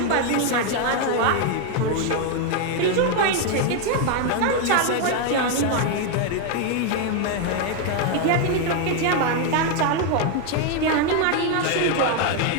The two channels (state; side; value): different; both; correlation 0.01